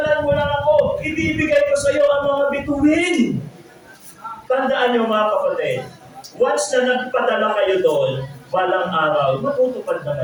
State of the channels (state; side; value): identical; both; correlation 1.00